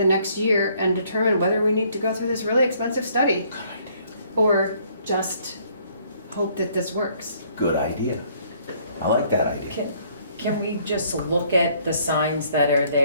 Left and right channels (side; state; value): both; inverted; correlation -0.64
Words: next year and determine whether we need to go through this really expensive study or just hope that this works. Good idea. I like that idea. Can we just look at the signs that are